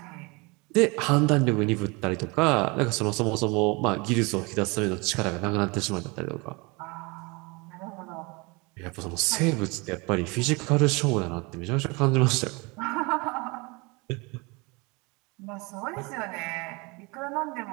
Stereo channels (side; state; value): left; quieter; 27.3 dB